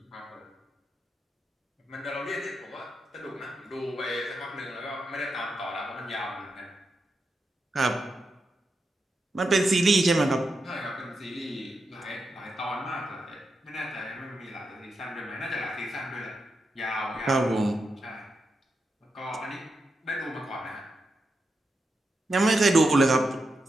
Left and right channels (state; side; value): normal; both; correlation 0.86